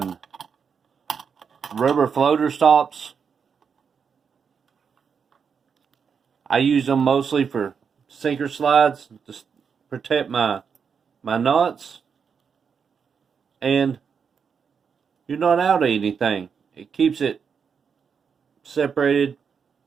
rubber floater stops. I use them mostly for sinker slides. Just protect my knots, and you're not out of anything. It keeps it separated.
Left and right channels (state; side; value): quieter; left; 6.4 dB